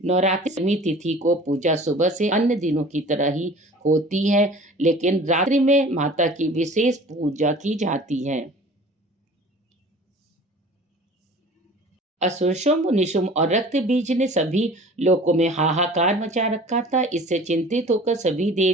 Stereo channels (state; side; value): normal; both; correlation 0.44